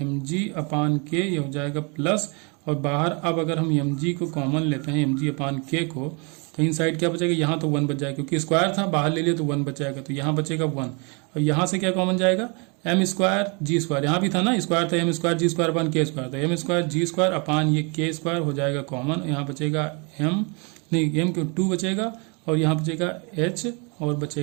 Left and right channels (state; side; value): quieter; left; 32.7 dB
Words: mg/k, ये हो जाएगा प्लस, और बाहर अब अगर हम mg को कॉमन लेते हैं mg/k को, तो इन साइड क्या बचेगा, यहाँ तो 1 बच जाएगा क्योंकि स्क्वायर था, बाहर ले लिया तो 1 बच जाएगा, तो यहाँ बचेगा 1, और यहाँ से क्या कॉमन जाएगा m स्क्वायर g स्क्वायर, यहाँ भी था ना स्क्वायर था, m square g square upon k square, तो m square g square upon ये k स्क्वायर हो जाएगा कॉमन, यहाँ बचेगा m क्यों 2 बचेगा, और यहाँ बचेगा h और